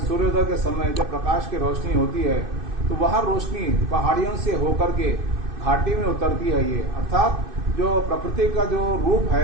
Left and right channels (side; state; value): left; late; 2.6 ms